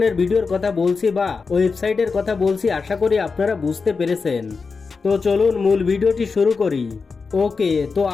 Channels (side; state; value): right; quieter; 4.7 dB